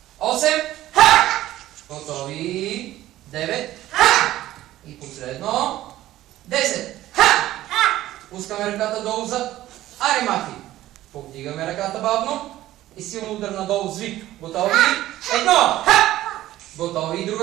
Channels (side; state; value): left; quieter; 14.7 dB